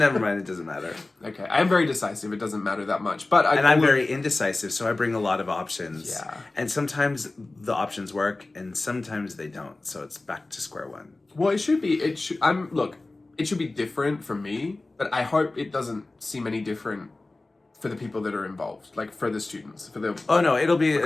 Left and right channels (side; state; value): right; quieter; 3.1 dB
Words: mind. It doesn't matter. Okay. I am very decisive. It doesn't matter that much. But I'm very indecisive, so I bring a lot of options. Yeah. And sometimes the options work, and sometimes they don't. So it's back to square one. Well, it should be. It should be different for me, but I hope it doesn't seem any different for the people that are involved, like for the students, for the. Oh no, it'll be